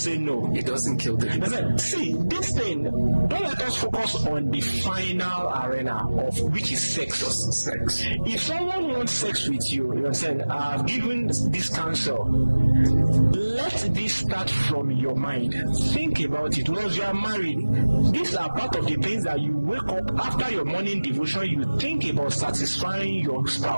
no. It doesn't kill the libido. See, this thing, don't let us focus on the final arena of which is sex. Just sex. If someone wants sex with you, you understand, I've given this counsel. Let this start from your mind. Think about it. Once you are married, these are part of the things that you wake up after your morning devotion, you think about satisfying your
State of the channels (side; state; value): both; inverted; correlation -1.00